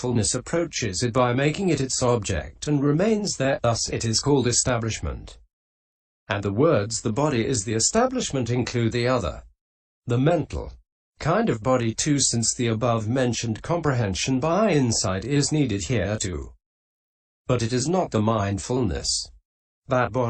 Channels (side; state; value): both; identical; correlation 1.00